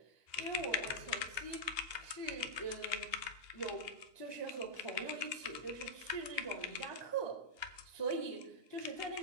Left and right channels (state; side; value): late; left; 2.8 ms